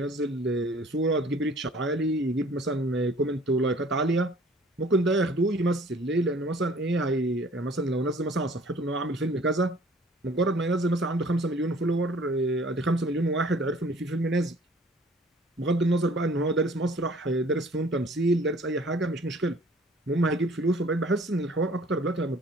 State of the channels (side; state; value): both; normal; correlation 0.53